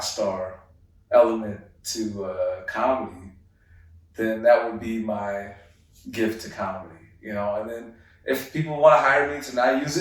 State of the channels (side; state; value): both; identical; correlation 1.00